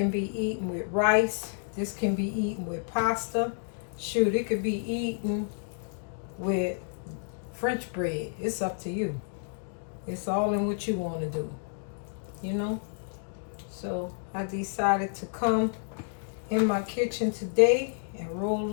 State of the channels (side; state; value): right; silent; digital silence